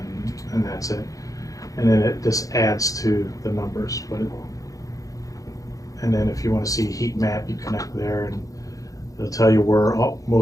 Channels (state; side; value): late; right; 0.17 ms